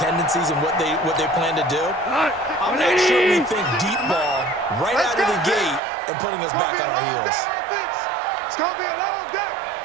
and what they plan to do. I'm not sure we think deep ball right out of the gate and putting us back on our heels. It's going to be a long day.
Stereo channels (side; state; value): left; drops out; at 5.8 s